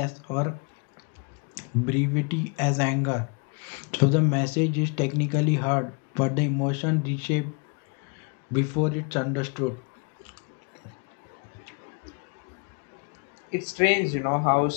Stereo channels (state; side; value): quieter; right; 35.4 dB